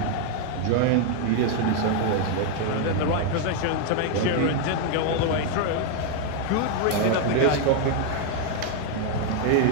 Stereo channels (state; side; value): different; both; correlation 0.01